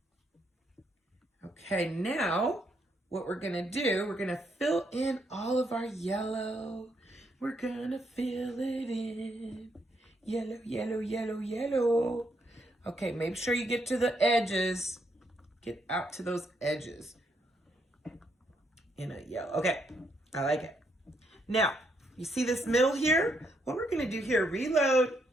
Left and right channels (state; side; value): normal; both; correlation 0.76